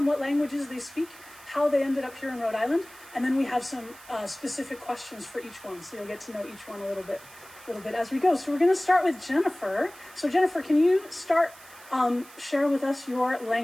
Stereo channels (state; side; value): noise; right; hiss, 21 dB below the sound